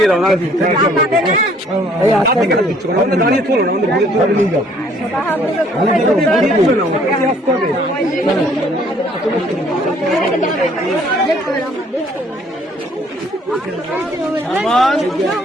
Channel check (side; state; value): both; normal; correlation 0.60